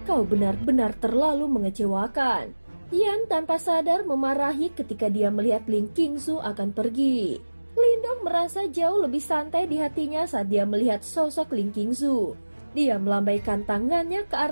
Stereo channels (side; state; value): both; inverted; correlation -1.00